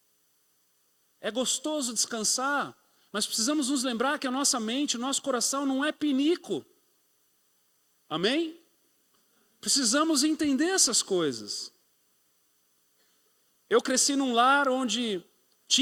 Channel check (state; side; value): identical; both; correlation 1.00